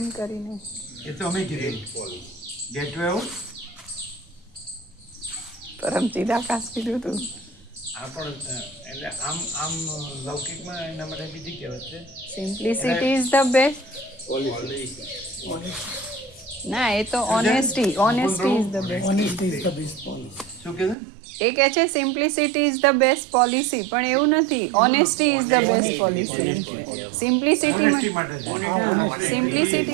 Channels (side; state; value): left; drops out; at 21.0 s